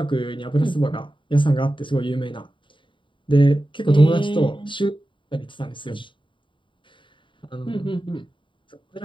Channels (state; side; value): late; right; 0.24 ms